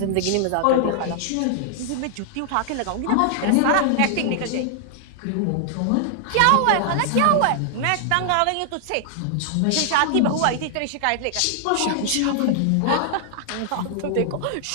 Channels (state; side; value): different; both; correlation -0.01